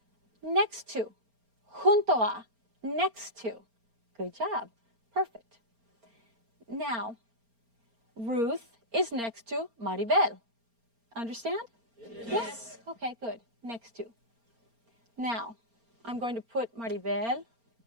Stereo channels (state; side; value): late; left; 4.3 ms